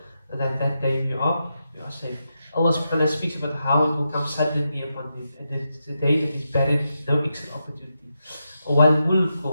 that that day we are safe. Allah subhanahu wa ta'ala speaks about how it will come suddenly upon them, and it's the day that is barren, no exit opportunity. Wal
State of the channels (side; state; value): both; inverted; correlation -0.86